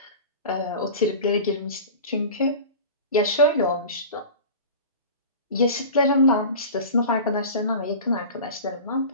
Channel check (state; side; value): inverted; both; correlation -0.35